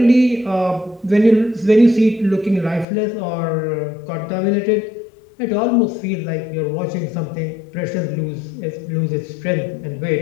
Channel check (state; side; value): drops out; right; at 2.9 s